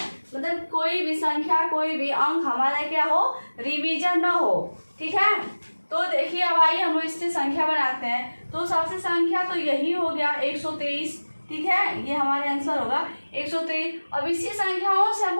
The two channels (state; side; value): inverted; both; correlation -1.00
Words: मतलब कोई भी संख्या, कोई भी अंक हमारा क्या हो, रिवीजन ना हो, ठीक है। तो देखिए अब आइए हम इससे संख्या बनाते हैं। तो सबसे संख्या तो यही हो गया 123, ठीक है, ये हमारे आंसर होगा 123। अब इसी संख्याओं से